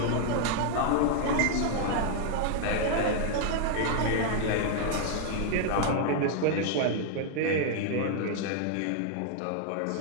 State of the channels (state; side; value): different; both; correlation 0.00